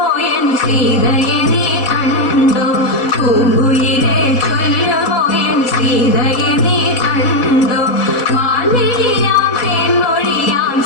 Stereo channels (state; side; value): late; right; 4.1 ms